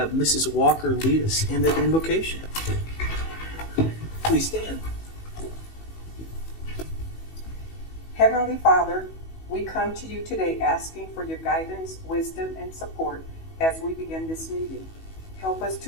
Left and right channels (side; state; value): right; late; 18 ms